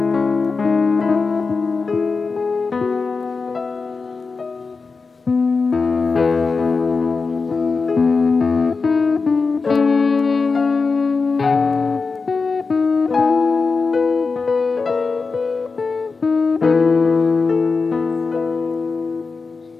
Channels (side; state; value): right; quieter; 4.4 dB